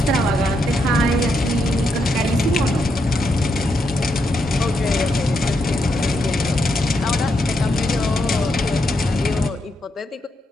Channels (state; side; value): normal; both; correlation 0.81